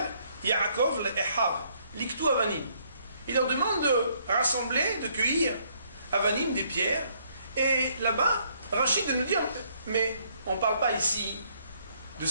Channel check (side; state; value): both; inverted; correlation -0.67